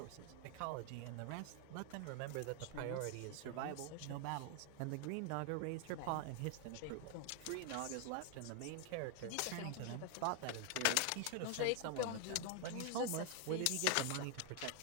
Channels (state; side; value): different; both; correlation 0.00